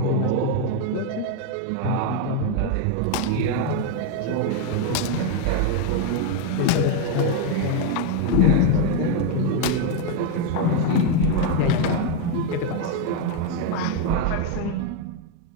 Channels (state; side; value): different; both; correlation 0.02